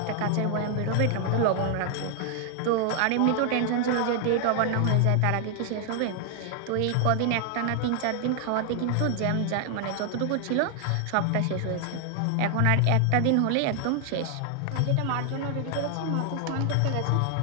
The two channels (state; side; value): different; both; correlation 0.00